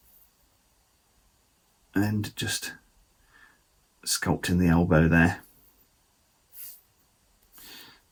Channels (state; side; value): identical; both; correlation 1.00